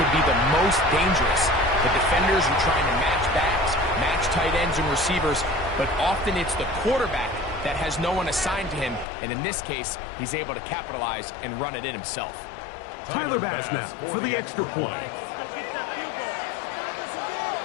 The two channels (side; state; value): right; drops out; at 9.1 s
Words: be the most dangerous. The defenders are trying to match backs, match tight ends and receivers, but often it's the quarterback that has no one assigned to him, and in this case, he's able to capitalize and run it in himself. Tyler Bass now for the extra point.